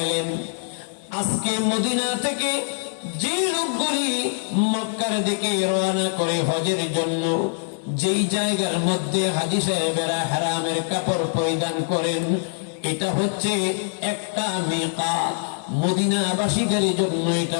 আজকে মদিনা থেকে যে লোকগুলি মক্কার দিকে রওনা করে হজের জন্য, যেই জায়গার মধ্যে হাজী সাহেবেরা হারামের কাপড় পরিধান করেন, এটা হচ্ছে একটা মিকাত। মদিনাবাসীদের জন্য এটা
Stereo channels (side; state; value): right; silent; digital silence